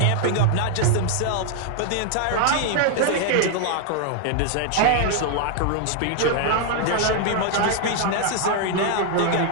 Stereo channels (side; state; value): both; different; correlation 0.00